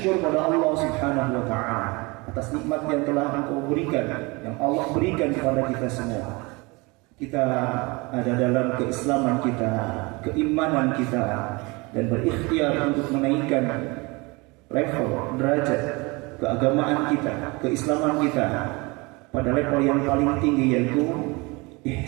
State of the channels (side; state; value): left; quieter; 25.9 dB